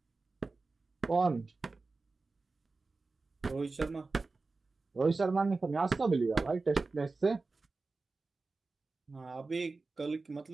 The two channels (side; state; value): left; quieter; 3.8 dB